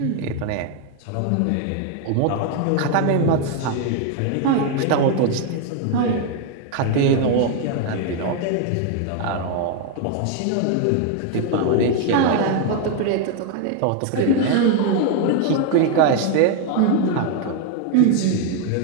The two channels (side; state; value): both; different; correlation 0.00